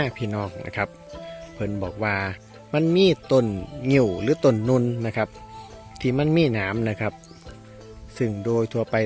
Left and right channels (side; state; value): both; identical; correlation 1.00